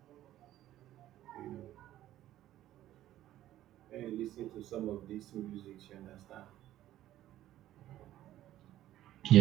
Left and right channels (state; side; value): quieter; left; 13.5 dB